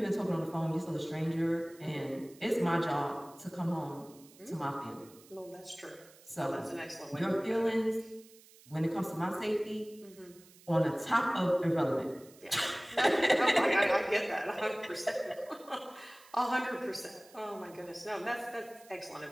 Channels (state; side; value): noise; right; hiss, 24 dB below the sound